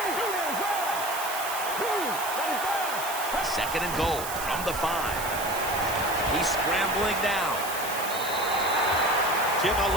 Second and goal from the 5. He's scrambling down. Jim, I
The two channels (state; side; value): noise; right; hiss, 8 dB below the sound